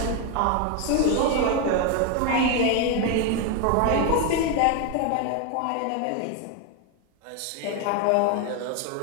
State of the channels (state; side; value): different; both; correlation 0.01